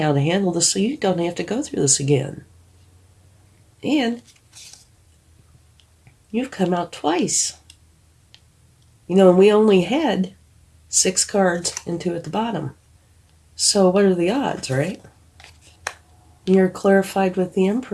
to handle this so you don't have to go through this again. And you've come out twice. And we only had 6 cards and 2 at the bottom. So what are the odds, right? You're clarified with the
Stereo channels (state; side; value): identical; both; correlation 1.00